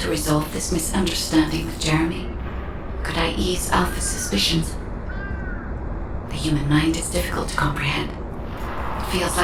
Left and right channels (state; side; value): identical; both; correlation 1.00